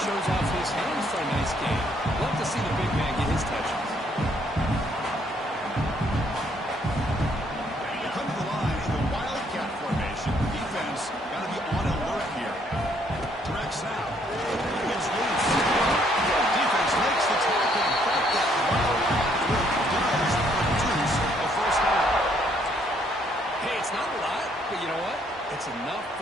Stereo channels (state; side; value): normal; both; correlation 0.68